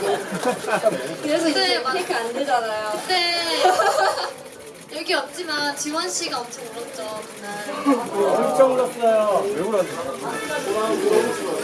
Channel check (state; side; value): identical; both; correlation 1.00